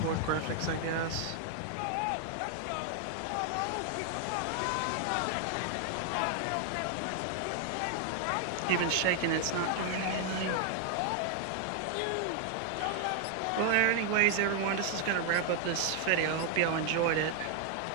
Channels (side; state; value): both; different; correlation 0.00